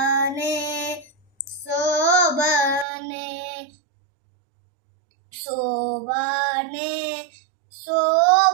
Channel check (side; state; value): left; drops out; at 2.9 s